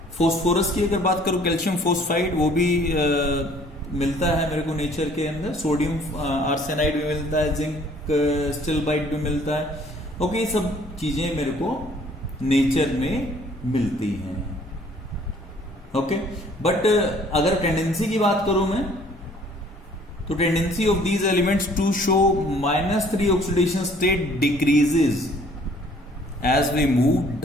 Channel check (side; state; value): both; normal; correlation 0.57